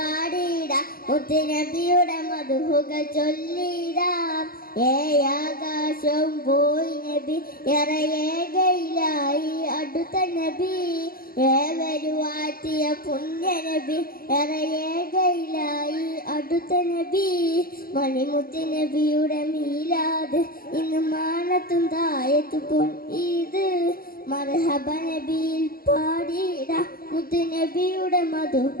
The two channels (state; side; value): late; right; 0.43 ms